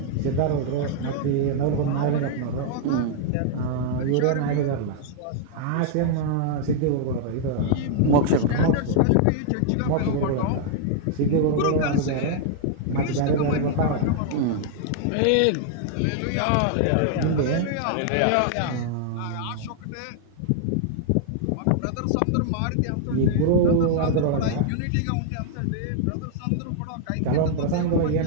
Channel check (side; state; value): both; different; correlation -0.01